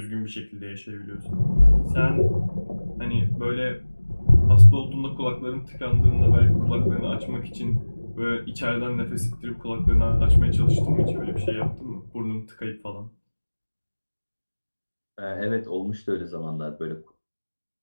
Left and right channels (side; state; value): both; inverted; correlation -1.00